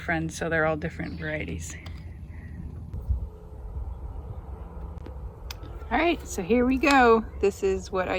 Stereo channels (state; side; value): identical; both; correlation 1.00